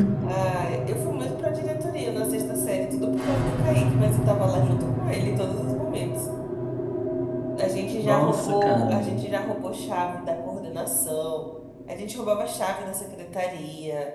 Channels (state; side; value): identical; both; correlation 1.00